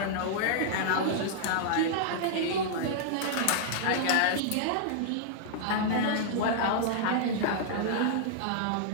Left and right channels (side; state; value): both; different; correlation -0.01